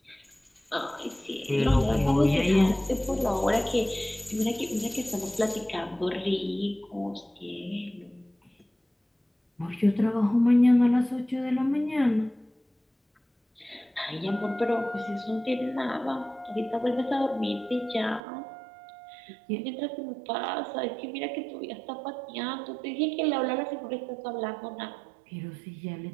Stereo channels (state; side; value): drops out; left; at 18.2 s